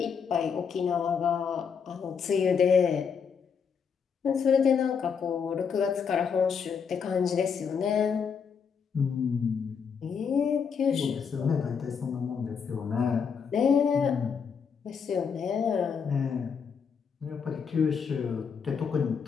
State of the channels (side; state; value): right; quieter; 6.5 dB